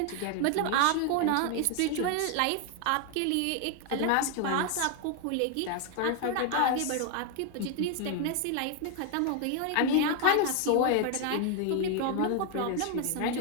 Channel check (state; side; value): different; both; correlation 0.01